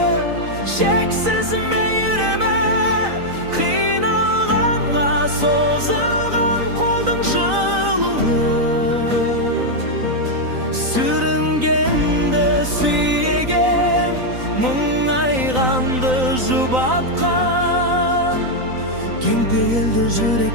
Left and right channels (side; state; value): left; late; 3.9 ms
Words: шексіз мейірімі, қиналғанға созылған қолдың жылуы, сүрінгенді сүйеген, мұңайғанды жұбатқан, кең пейілді